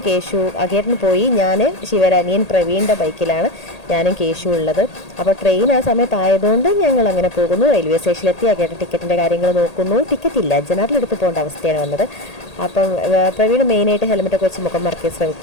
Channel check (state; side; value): late; right; 1.8 ms